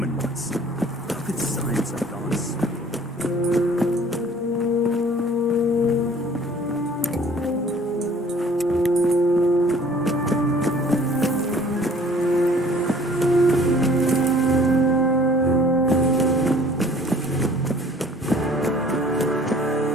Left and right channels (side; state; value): both; normal; correlation 0.53